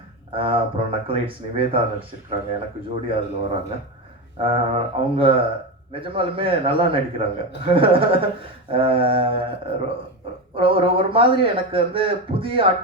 அப்புறம் நக்கலைட்ஸ் நிவேதா நடிச்சிருக்கிறாங்க, எனக்கு ஜோடி அதில் வராங்க. அவங்க நிஜமாலுமே நல்லா நடிக்கிறாங்க. ஒரு மாதிரி எனக்கு வந்து புதிய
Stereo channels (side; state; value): both; normal; correlation 0.17